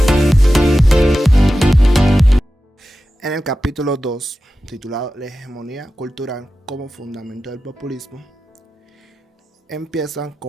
En el capítulo 2, titulado La hegemonía cultural como fundamento del populismo, empiezan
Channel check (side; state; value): both; normal; correlation 0.93